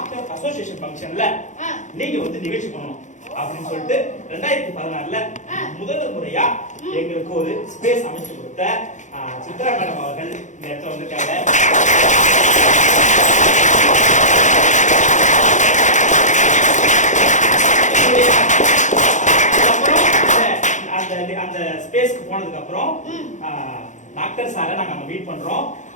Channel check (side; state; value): right; late; 0.35 ms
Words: அசோசியேஷன் ஃபங்க்ஷன்ல நீங்க வந்து நிகழ்ச்சி பண்ணணும் அப்படின்னு சொல்லிட்டு 2016ல முதல் முறையா எங்களுக்கு ஒரு ஸ்பேஸ் அமைச்சு கொடுத்த சித்ரா மேடம் அவர்கள் இந்த இடத்துல வந்திருக்காங்க. அந்த ஸ்பேஸ்க்கு போனதுக்கு அப்புறம் டாக்டர் சாரை நாங்க மீட் பண்றோம்.